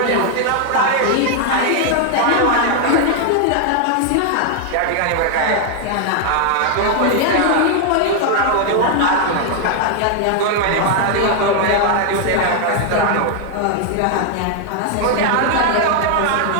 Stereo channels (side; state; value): both; different; correlation 0.00